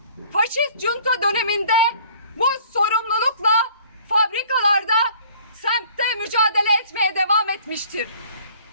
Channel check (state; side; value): inverted; both; correlation -0.54